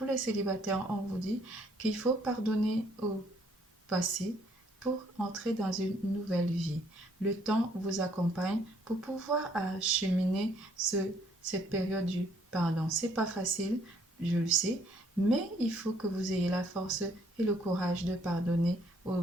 les célibataires, on vous dit qu'il faut pardonner au passé pour entrer dans une nouvelle vie. Le temps vous accompagne pour pouvoir acheminer cette période du pardon. C'est pas facile, je le sais, mais il faut que vous ayez la force et le courage de pardonner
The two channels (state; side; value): normal; both; correlation 0.65